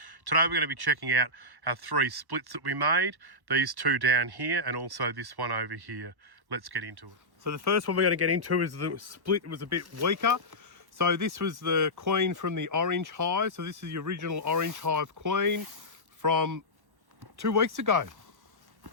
Today we're going to be checking out our 3 splits that we made, these 2 down here and also this one over here. Let's get into it. So the first one we're going to get into is the split was a bit weaker. So this was the queen from the orange hive. So this is the original orange hive queen from 2 weeks ago.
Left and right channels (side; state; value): left; late; 1.1 ms